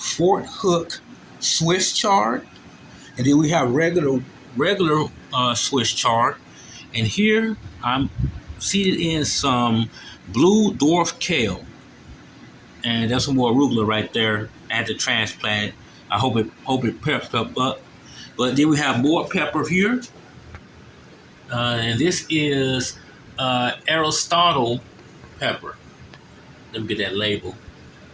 Hook Swiss chard, and then we have regular Swiss chard. And here I'm seeded in some blue dwarf kale. And there's some more arugula right there. I had to transplant it. I hope it peps up. But then we have more pepper here. And this is Aristotle pepper. Let me get that label.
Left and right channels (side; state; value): both; identical; correlation 1.00